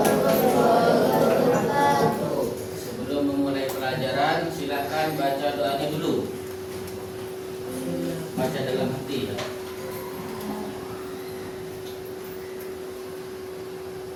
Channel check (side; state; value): both; identical; correlation 1.00